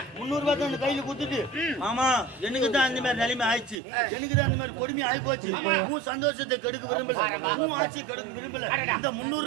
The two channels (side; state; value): left; drops out; at 3.8 s